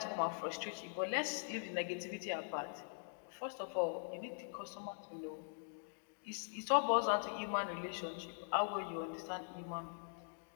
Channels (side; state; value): right; silent; digital silence